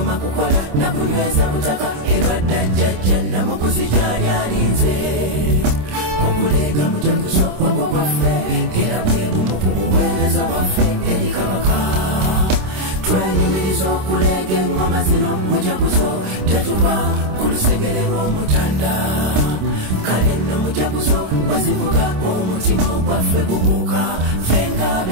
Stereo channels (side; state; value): left; late; 26 ms